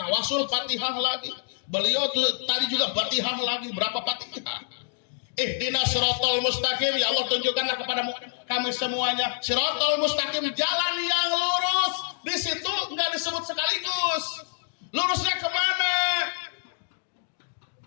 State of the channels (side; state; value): right; silent; 60 dB below the other